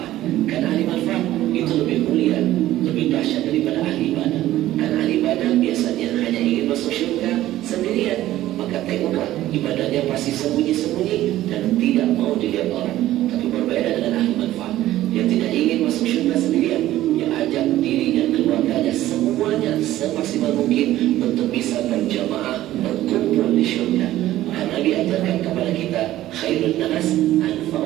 Karena ahli manfaat itu lebih mulia, lebih dahsyat daripada ahli ibadah. Karena ahli ibadah biasanya hanya ingin masuk surga sendirian. Maka tengoklah ibadahnya pasti sembunyi-sembunyi dan tidak mau dilihat orang. Tapi berbeda dengan ahli manfaat, dia tidak ingin masuk surga sendirian. Dia ajak diri dan keluarganya semuanya semaksimal mungkin untuk bisa berjamaah berkumpul di surga. Karena Nabi ajarkan kepada kita khairun nas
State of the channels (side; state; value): left; quieter; 14.5 dB